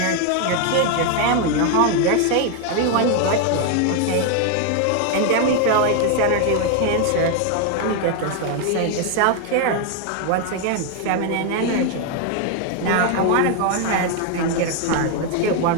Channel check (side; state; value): both; different; correlation 0.01